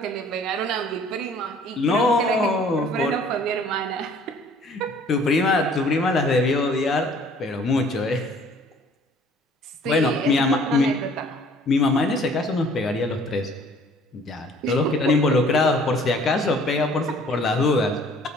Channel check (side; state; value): both; normal; correlation 0.55